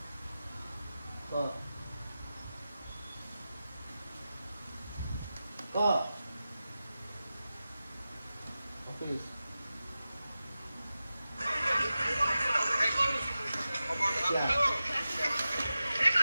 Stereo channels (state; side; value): inverted; both; correlation -0.94